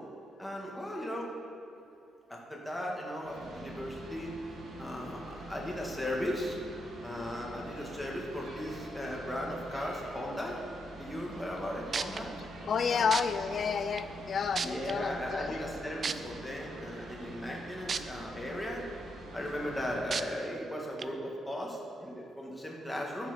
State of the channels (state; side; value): normal; both; correlation 0.81